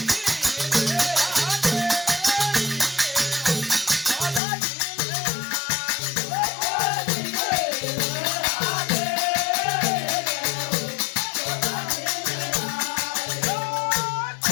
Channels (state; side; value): drops out; right; at 4.4 s